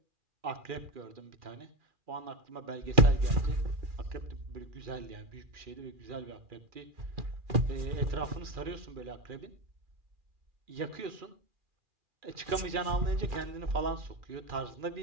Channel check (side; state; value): left; late; 2.4 ms